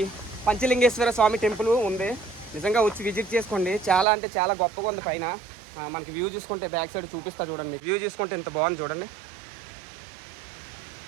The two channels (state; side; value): drops out; left; at 4.0 s